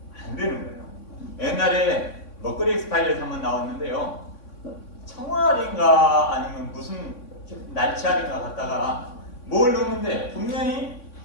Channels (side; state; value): right; late; 3.6 ms